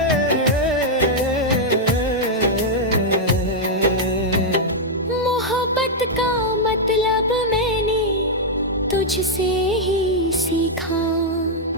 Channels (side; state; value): both; normal; correlation -0.03